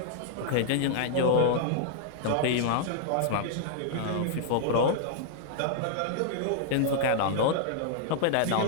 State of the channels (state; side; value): different; both; correlation -0.01